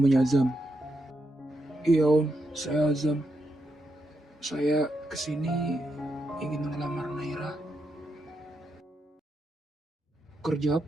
Azam? Iya om, saya Azam. Saya kesini ingin melamar Naira. Kerja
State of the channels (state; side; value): normal; both; correlation 0.83